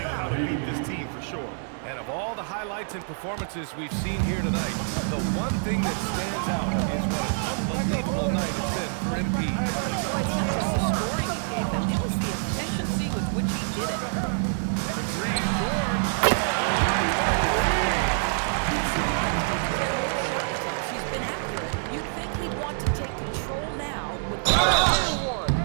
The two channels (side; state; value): left; silent; 60 dB below the other